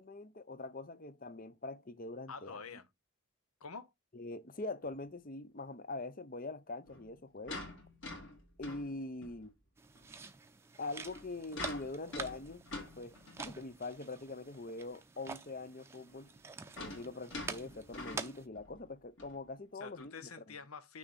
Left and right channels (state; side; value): normal; both; correlation 0.03